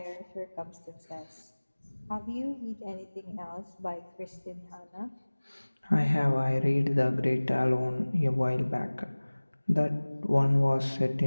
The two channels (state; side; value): inverted; both; correlation -1.00